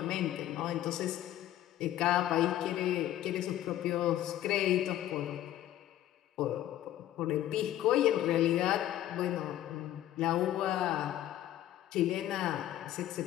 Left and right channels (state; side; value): quieter; right; 12.9 dB